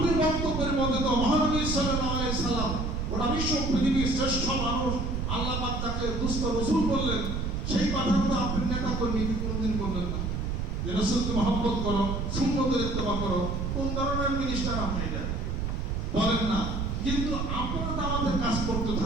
বক্তব্যের মধ্যে তো মহানবী সাল্লাল্লাহু আলাইহি সাল্লাম গোটা বিশ্ব পৃথিবীর শ্রেষ্ঠ মানুষ, আল্লাহ পাক তাকে দুস্থ রাসূল বললেন, সেই কথা তো আপনি নেতা কর্মী কোনদিন বললেন না যে রাসূলকে মহব্বত করো, সুন্নতের ইত্তেবা করো। কোন ধরনের মিনিস্টার আপনি এটা বলেন না? কিন্তু আপনারা দাওয়াতের কাজ করতে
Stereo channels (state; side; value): noise; right; rumble, 2 dB below the sound